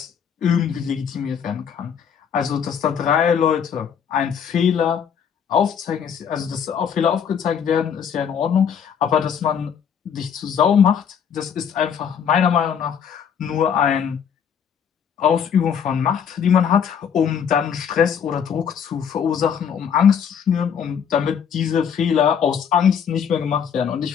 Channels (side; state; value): right; quieter; 7.7 dB